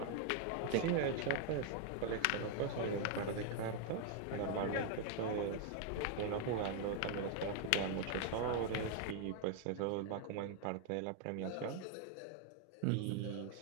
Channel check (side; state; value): both; different; correlation 0.00